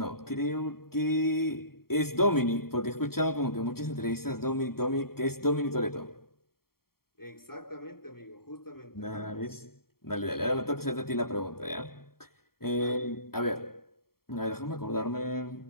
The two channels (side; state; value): right; late; 0.94 ms